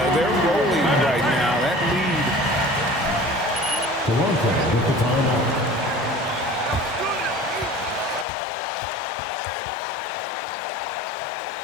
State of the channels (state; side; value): drops out; right; at 8.2 s